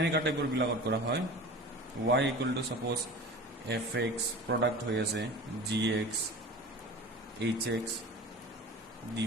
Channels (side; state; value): both; normal; correlation 0.37